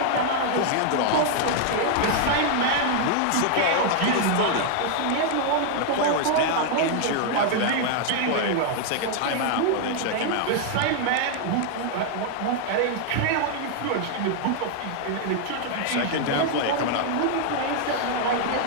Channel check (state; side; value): different; both; correlation 0.00